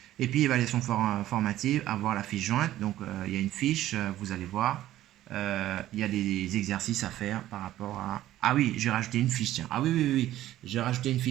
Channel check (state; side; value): quieter; left; 13.9 dB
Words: Et puis, évaluation formative, avoir la fiche jointe. Donc, il y a une fiche, vous allez voir. Il y a des exercices à faire par rapport à... Ah oui, j'ai rajouté une fiche, tiens. Ah oui. J'ai rajouté une